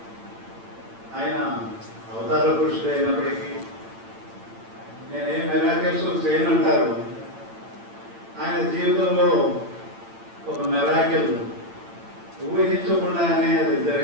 ఆయన అవతార పురుషుడు అయినప్పటికీ నేనేం మెరాకిల్స్ చేయనంటారు. ఆయన జీవితంలో ఒక మెరాకిల్ ఊహించకుండానే అది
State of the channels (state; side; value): late; left; 8.9 ms